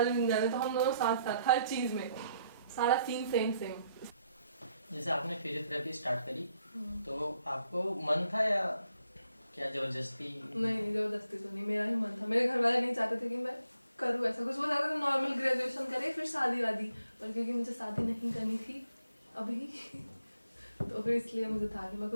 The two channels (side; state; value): both; inverted; correlation -0.74